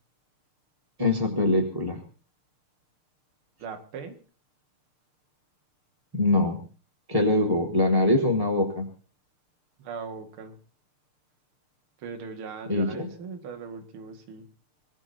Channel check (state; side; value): late; left; 6.6 ms